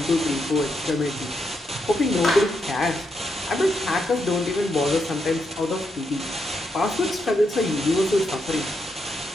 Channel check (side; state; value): both; normal; correlation 0.81